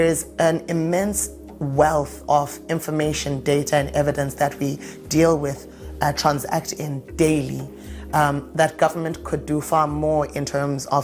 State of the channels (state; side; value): identical; both; correlation 1.00